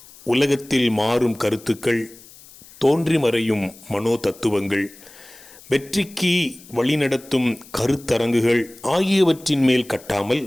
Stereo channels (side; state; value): left; noise; hiss, 22 dB below the sound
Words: உலகத்தில் மாறும் கருத்துக்கள், தோன்றி மறையும் மனோ தத்துவங்கள், வெற்றிக்கு வழிநடத்தும் கருத்தரங்குகள் ஆகியவற்றின் மேல் கட்டாமல்